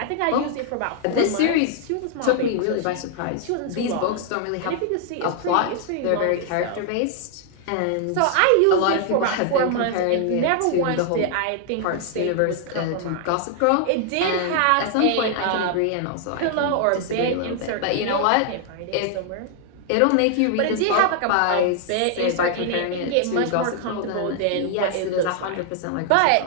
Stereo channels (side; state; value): both; different; correlation 0.00